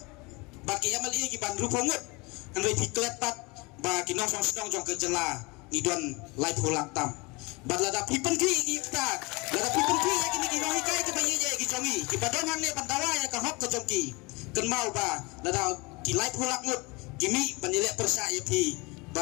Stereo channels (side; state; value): right; quieter; 26.4 dB